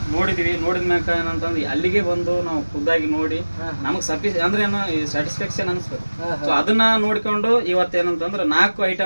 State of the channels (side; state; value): both; inverted; correlation -1.00